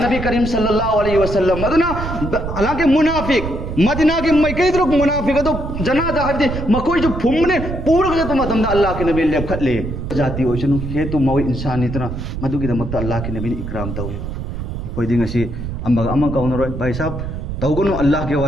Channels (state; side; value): noise; right; rumble, 6 dB below the sound